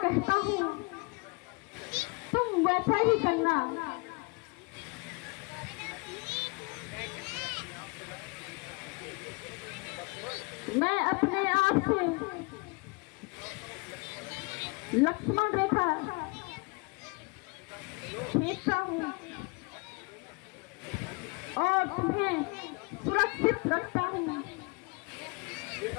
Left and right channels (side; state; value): right; quieter; 30.2 dB